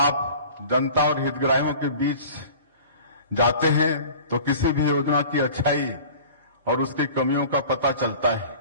जनता और हितग्राहियों के बीच जाते हैं तो किसी भी योजना की अच्छाई और उसकी कमियों का पता चलता है।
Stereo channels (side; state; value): both; inverted; correlation -0.43